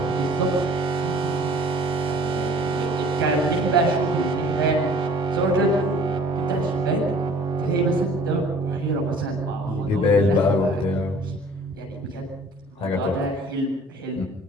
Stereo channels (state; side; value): normal; both; correlation 0.50